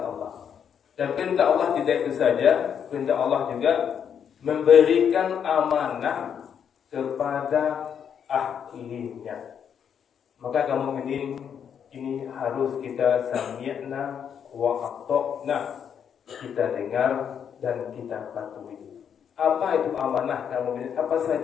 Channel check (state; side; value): quieter; right; 8.0 dB